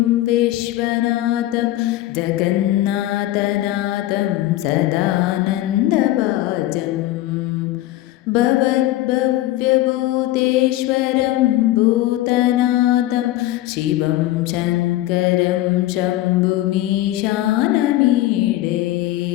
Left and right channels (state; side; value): quieter; right; 15.6 dB